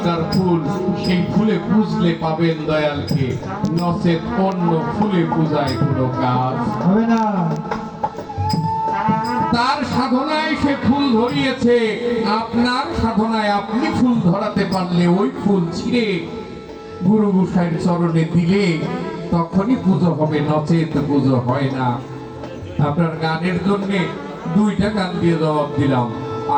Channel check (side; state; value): both; identical; correlation 1.00